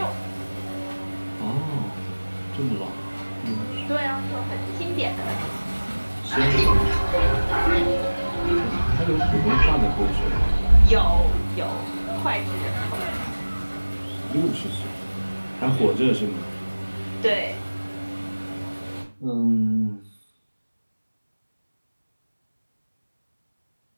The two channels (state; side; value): inverted; both; correlation -1.00